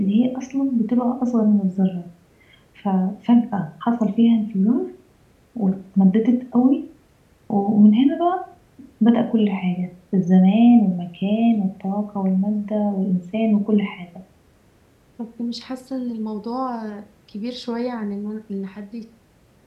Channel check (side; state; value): both; identical; correlation 1.00